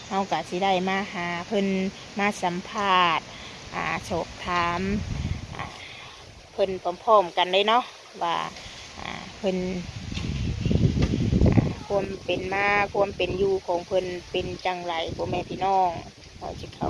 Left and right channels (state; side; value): identical; both; correlation 1.00